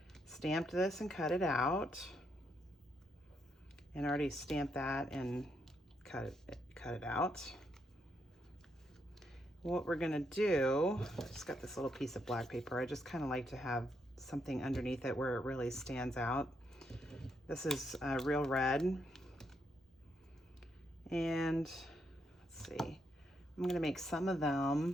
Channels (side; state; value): both; normal; correlation 0.78